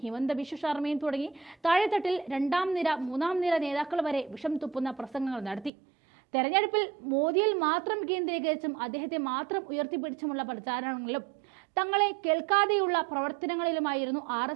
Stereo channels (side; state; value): left; drops out; at 5.7 s